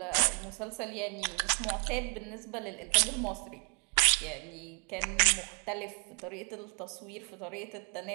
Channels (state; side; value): quieter; left; 38.0 dB